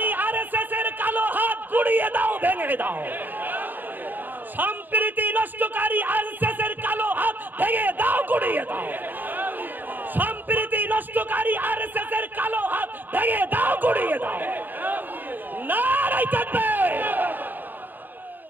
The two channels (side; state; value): left; late; 0.090 ms